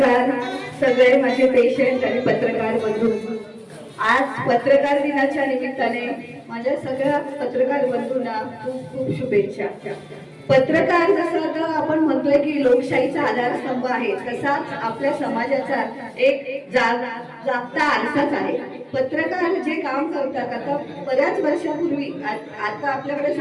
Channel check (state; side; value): identical; both; correlation 1.00